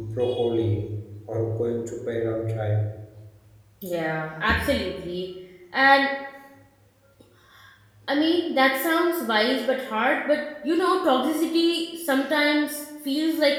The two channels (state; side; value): identical; both; correlation 1.00